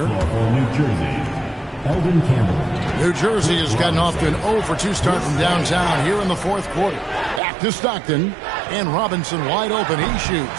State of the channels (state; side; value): drops out; left; at 7.4 s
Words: New Jersey, Eldon Campbell. New Jersey has gotten off to an 0 for 2 start from downtown here in the fourth quarter. Back to Stockton. And Robinson wide open. He